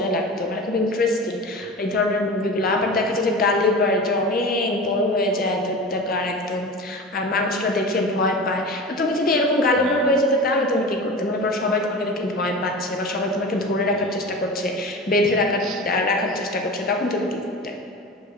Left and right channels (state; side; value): normal; both; correlation 0.32